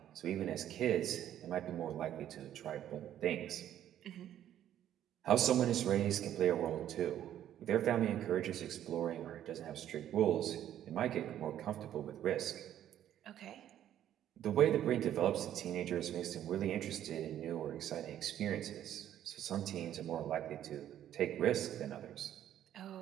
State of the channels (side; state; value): left; quieter; 11.2 dB